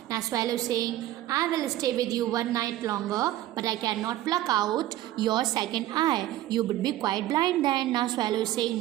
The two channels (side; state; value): left; quieter; 14.3 dB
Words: Now swallow is saying, I will stay with you one night longer, but I cannot pluck out your second eye. You would be quite blind then. Now swallow is saying,